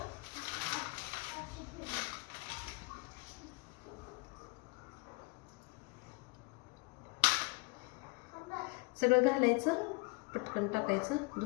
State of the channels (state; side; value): quieter; right; 29.4 dB